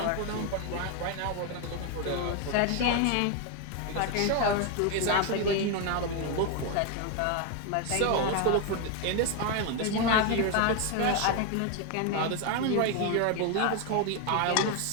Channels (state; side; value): different; both; correlation 0.01